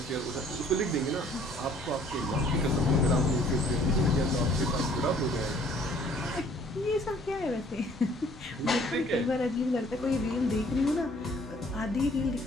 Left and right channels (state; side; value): normal; both; correlation 0.58